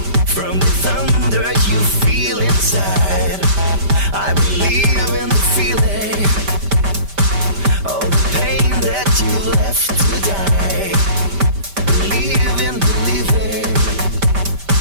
from the thunder you feel inside. I believe in the feeling, all the pain that you left to die. Believe in believing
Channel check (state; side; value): late; left; 5.1 ms